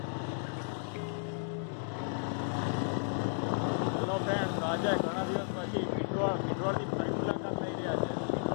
આજે ઘણા દિવસ પછી પિંડવાળથી ફરી મુલાકાત લઈ રહ્યા છે.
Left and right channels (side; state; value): right; silent; digital silence